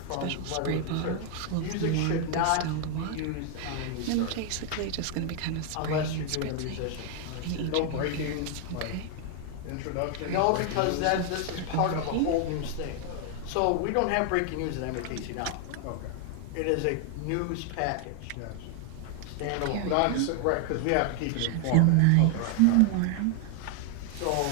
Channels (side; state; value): both; different; correlation 0.00